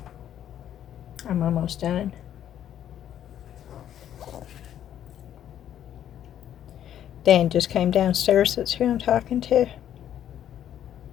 I'm almost done. Dan just came downstairs. That's who I'm talking to.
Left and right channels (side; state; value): right; quieter; 10.6 dB